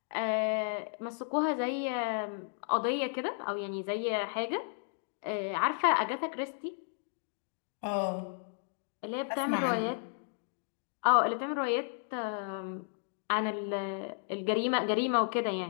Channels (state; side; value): silent; right; digital silence